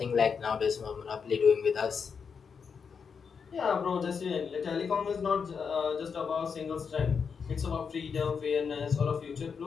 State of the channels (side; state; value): right; quieter; 6.1 dB